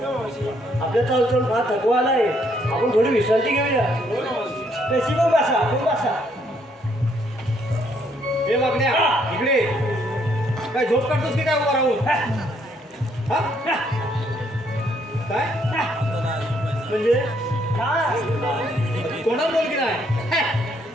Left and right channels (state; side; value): normal; both; correlation 0.70